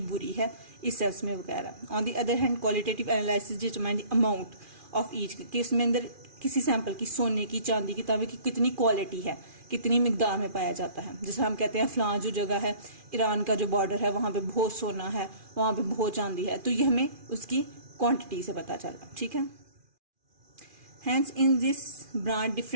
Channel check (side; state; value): left; late; 2.4 ms